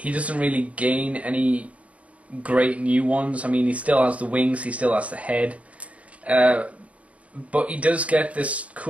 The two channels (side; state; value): left; late; 0.066 ms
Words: doesn't really gain any great new ones. I mean, he still has the wings, he still has the head, but he does get this